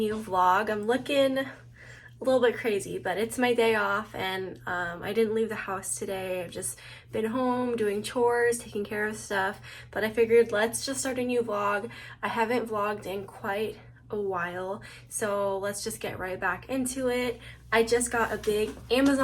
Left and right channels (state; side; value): identical; both; correlation 1.00